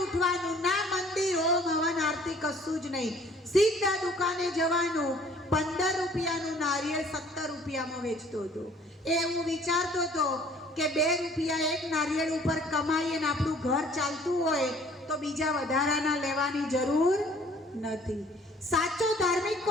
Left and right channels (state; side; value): normal; both; correlation 0.55